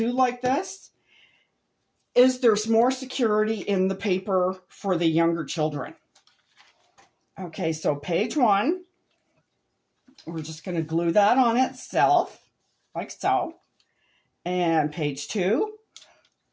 like this is there's more security in the paper for the younger children. Okay, so page 1, we're just going to glue that on itself, like so. And page 2,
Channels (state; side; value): identical; both; correlation 1.00